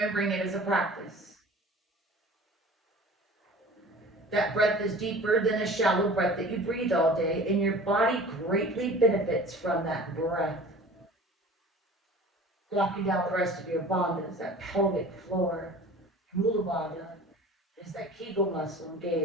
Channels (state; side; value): normal; both; correlation 0.42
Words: it as a practice. That breath is deeper than a shallow breath that you breathe all day, and your body greatly benefits from that breath. Locking down the rest of your bandhas, that pelvic floor. Mula bandha is that Kegel muscle